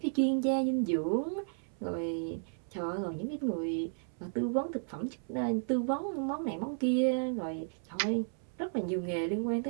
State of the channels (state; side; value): silent; left; 55 dB below the other